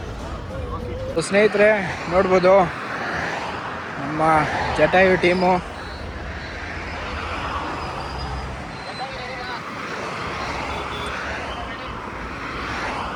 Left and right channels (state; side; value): identical; both; correlation 1.00